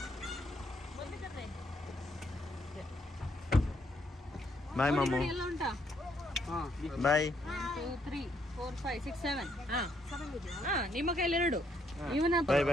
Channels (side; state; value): both; normal; correlation 0.72